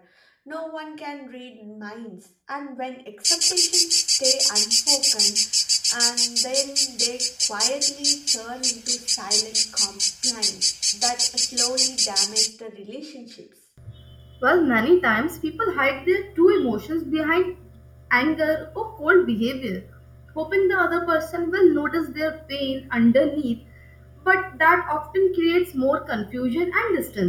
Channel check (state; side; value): identical; both; correlation 1.00